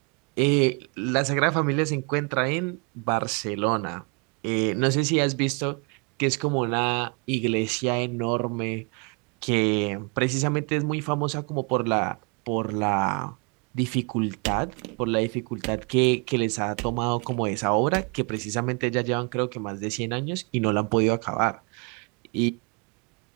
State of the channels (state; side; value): quieter; left; 34.2 dB